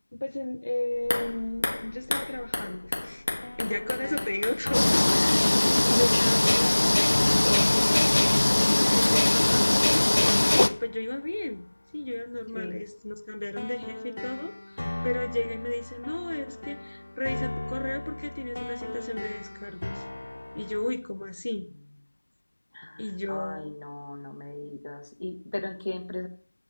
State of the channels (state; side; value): inverted; both; correlation -1.00